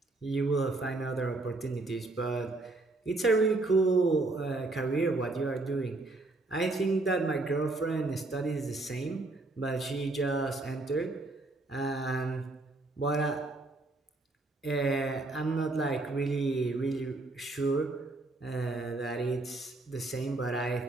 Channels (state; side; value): quieter; left; 3.0 dB